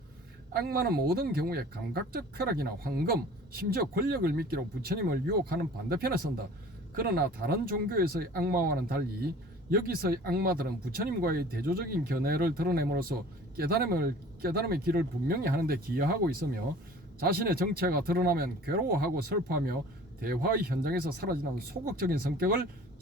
악마는 모든 경우에 감각적 쾌락이나 황금, 심지어 권력을 미끼로 부처님을 유혹하는 반대편에 선다. 그러나 다른 종교에서의 악마와는 달리 여기서의 악마들은 부처님과의 대조적인 견해를 드러냄으로써 깨달음의 길을 분명히 하는데 기여하고 있으며 자신의 정체가 드러나면 괴로워하고 슬퍼하며 대화의 현장에서 사라지는 소극적인 성격을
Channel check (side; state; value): both; normal; correlation 0.46